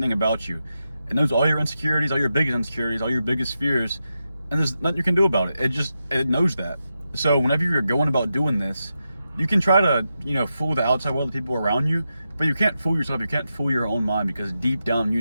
about you. It knows all your insecurities, all your biggest insecurities, all your biggest fears, and there's nothing you can do about it. It knows that. So whenever you're going about doing this, you can try to, fool the outside world, the people around you, but you can't fool yourself. You can't fool your own mind, because deep down,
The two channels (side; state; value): both; inverted; correlation -0.88